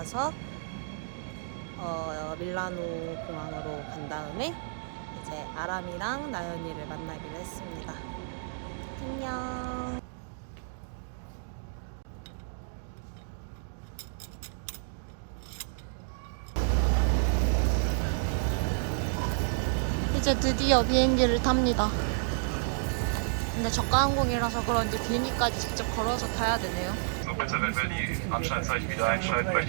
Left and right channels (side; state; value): left; silent; digital silence